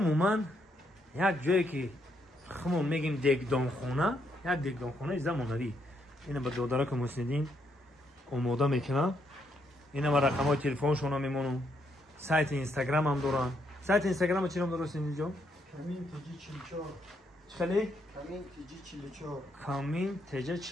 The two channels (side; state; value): both; normal; correlation 0.75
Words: یک جایی که خمون میگیم دیگدانخونه، یک دیگدانخونه زمانوی. اینو به داداره که مسندین آماده میکنم. اینا با رقمای تلفنشون هم میمونم. سایت اینستاگرام هم دارن. سایت اینستاگرام چی نام درست اینجا؟ کامین تیجی 44. خیلی؟ کامین تیجی 44. کامین تیجی